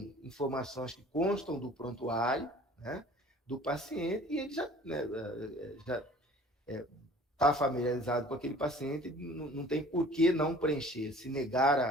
informações que constam do prontuário, né, do paciente, e ele já está familiarizado com aquele paciente, não tem por que não preencher, se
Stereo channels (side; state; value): both; normal; correlation 0.49